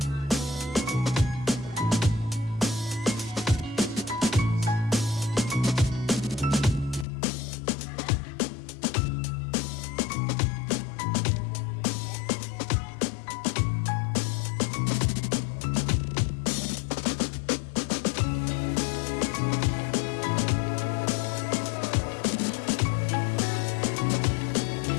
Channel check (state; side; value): drops out; right; at 7.1 s